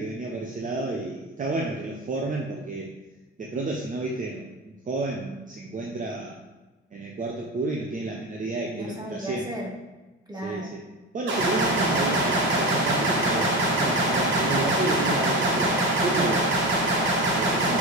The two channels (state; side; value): normal; both; correlation 0.22